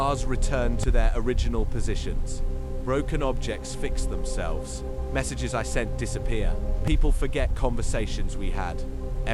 return to their original positions. Broken objects fix themselves. Messages I sent disappear. People forget conversations we had.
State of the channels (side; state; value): both; identical; correlation 1.00